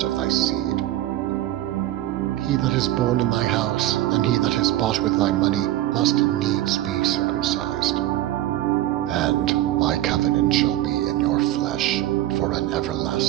of thy seed. He that is born in thy house, and he that is bought with thy money, must needs be circumcised. And my covenant shall be in your flesh, for an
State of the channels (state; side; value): quieter; left; 14.6 dB